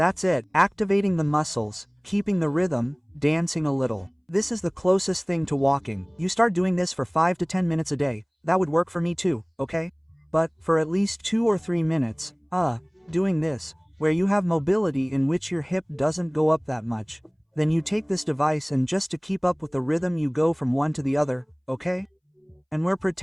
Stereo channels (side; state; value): both; identical; correlation 1.00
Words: it, activating the muscles, keeping the rhythm, dancing a little. This is the closest thing to walking. You start doing this for 5 to 10 minutes a day. That would work for me too, okay? But, for at least 2 or 3 minutes, doing this, where you have mobility in which your hip doesn't go up that much, then you take this device and just to keep up with the rhythm you go from one to the other, okay? And we're